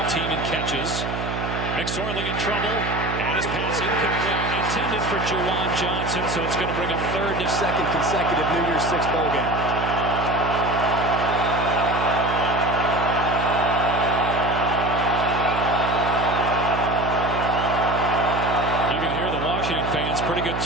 Team in catches. McSorley in trouble, and his pass incomplete. Intended for Juwan Johnson, so it's going to bring a second consecutive New Year's Six bowl game. You can hear the Washington fans. Pretty good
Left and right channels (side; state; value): right; noise; hum, 4 dB below the sound